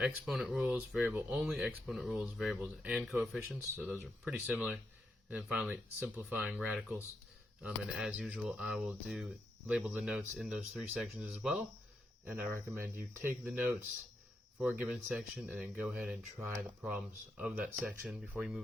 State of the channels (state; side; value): normal; both; correlation 0.83